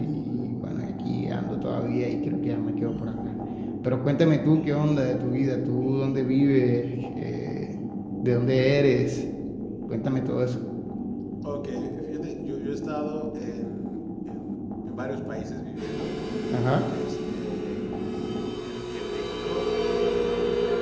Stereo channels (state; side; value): identical; both; correlation 1.00